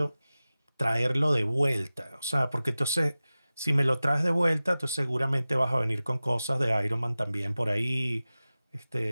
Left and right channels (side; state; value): both; inverted; correlation -0.96